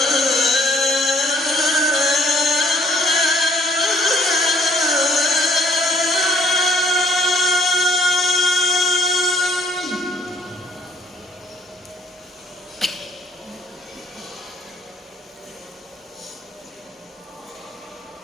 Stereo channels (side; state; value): both; normal; correlation 0.61